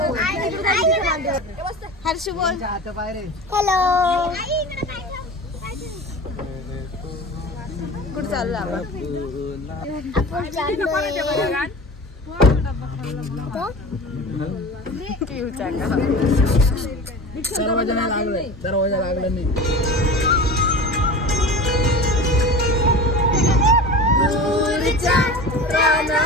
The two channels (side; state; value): both; normal; correlation 0.33